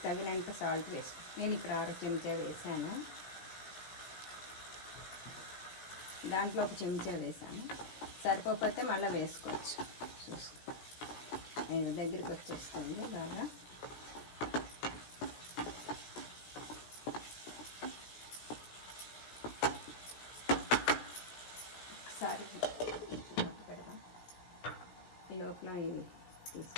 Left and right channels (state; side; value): late; right; 17 ms